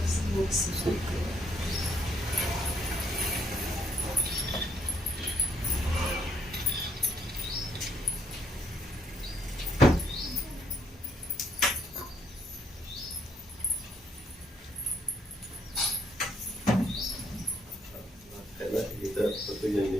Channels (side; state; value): both; normal; correlation 0.70